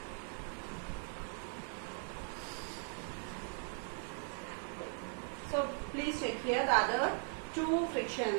please check here the other two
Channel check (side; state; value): left; silent; 52 dB below the other